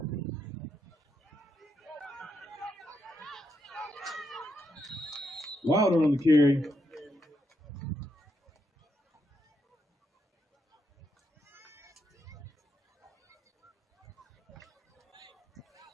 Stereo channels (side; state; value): both; normal; correlation 0.81